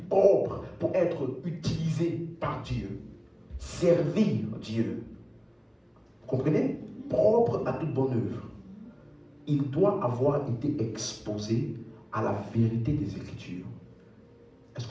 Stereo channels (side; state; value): both; identical; correlation 1.00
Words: propre pour être utilisé par Dieu, servir Dieu, comprenez? Propre à toute bonne œuvre, il doit avoir été exposé à la vérité des Écritures. Est-ce